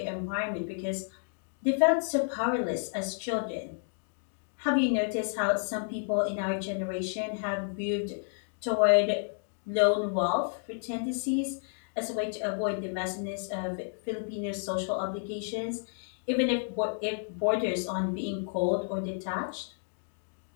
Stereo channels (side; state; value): right; silent; digital silence